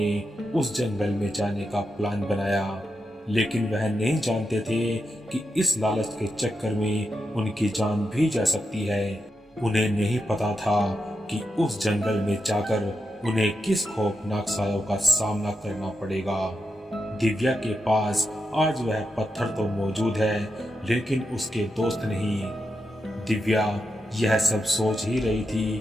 उस जंगल में जाने का प्लान बनाया, लेकिन वह नहीं जानते थे कि इस लालच के चक्कर में उनकी जान भी जा सकती है। उन्हें नहीं पता था कि उस जंगल में जाकर उन्हें किस खौफनाक सायों का सामना करना पड़ेगा। दिव्या के पास आज वह पत्थर तो मौजूद है, लेकिन उसके दोस्त नहीं। दिव्या यह सब सोच ही रही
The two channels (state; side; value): normal; both; correlation 0.86